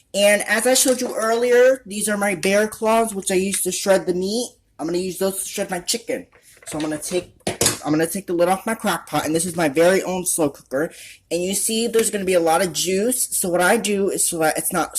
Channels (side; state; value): both; identical; correlation 1.00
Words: And as I showed you earlier, these are my bear claws, which I use to shred the meat. I'm going to use those to shred my chicken. So I'm going to take the lid off my crock pot, and this is my very own slow cooker. And you see there's going to be a lot of juice. So what I do is, so that it's not